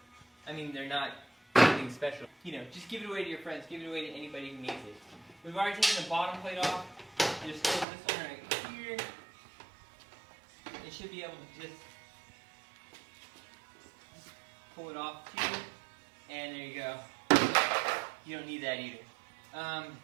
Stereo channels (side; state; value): left; drops out; at 7.9 s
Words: I mean, they're not anything special. You know, just give it away to your friends. Give it away to anybody who needs it. We've already taken the bottom plate off. Just close this one right here. It should be able to just pull it off too. And there you go. You don't need that either.